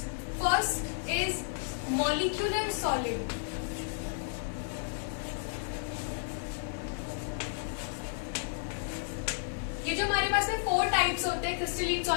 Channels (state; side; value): silent; right; digital silence